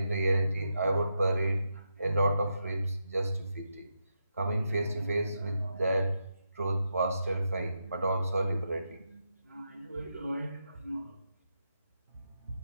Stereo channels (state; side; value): inverted; both; correlation -0.85